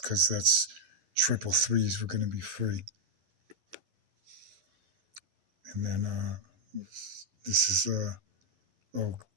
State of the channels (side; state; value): left; late; 11 ms